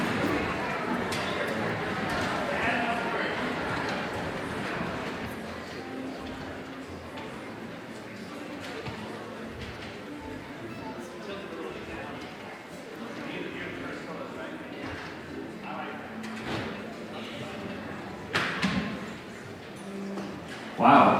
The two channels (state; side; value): identical; both; correlation 1.00